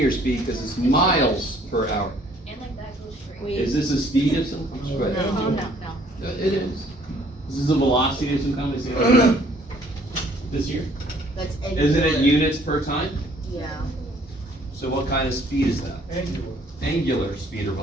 speed? Because it's miles per hour. And like that goes straight. Is this a speed of some kind? Go ahead. No. It is. This is a velocity of some kind. Is it this here? That's Isn't it units per time? Yeah. So what kind of speed is that? Angular. Angular speed or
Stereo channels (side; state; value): both; normal; correlation 0.60